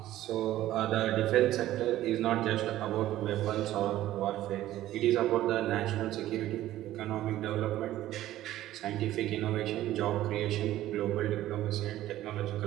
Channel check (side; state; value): left; quieter; 14.2 dB